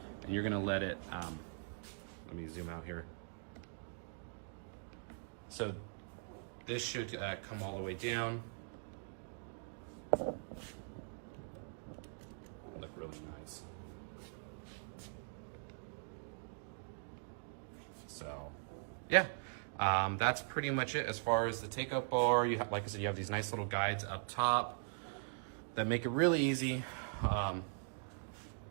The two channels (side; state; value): left; silent; digital silence